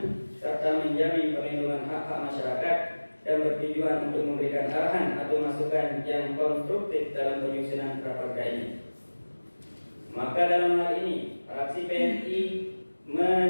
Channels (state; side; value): inverted; both; correlation -1.00